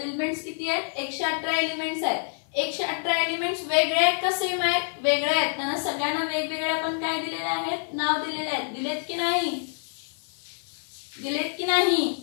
एलिमेंट्स किती आहेत 118 एलिमेंट्स आहेत. 118 एलिमेंट्स वेगळे आहेत का सेम आहेत. वेगळे आहेत. त्यांना सगळ्यांना वेगवेगळे आपण काय दिलेले आहेत, नाव दिलेले आहेत. दिलेत की नाही. दिलेत की नाही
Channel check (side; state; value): right; silent; digital silence